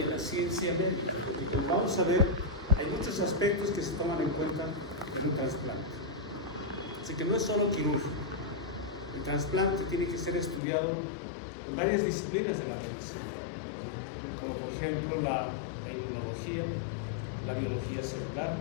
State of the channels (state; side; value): drops out; right; at 10.6 s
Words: la ciencia médica, porque como vamos a ver, hay muchos aspectos que se toman en cuenta en un trasplante. Así que no es solo quirúrgico. El trasplante tiene que ser estudiado en varias disciplinas de la medicina, como por ejemplo la inmunología, la biología celular,